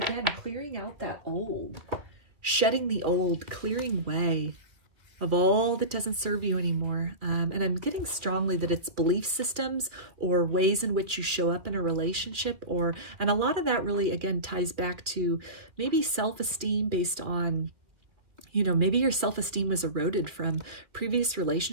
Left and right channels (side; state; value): left; late; 2.3 ms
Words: clearing out that old, shedding the old, clearing way of all that doesn't serve you anymore. And I'm getting strongly that it's belief systems or ways in which you show up in a relationship, and a lot of that really, again, ties back to maybe self-esteem based on, you know, maybe your self-esteem was eroded from previous